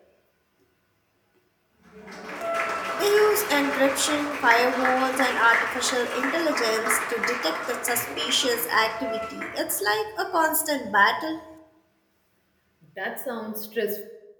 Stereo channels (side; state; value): both; identical; correlation 1.00